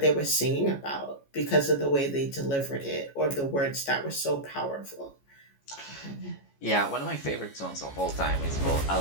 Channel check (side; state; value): right; late; 14 ms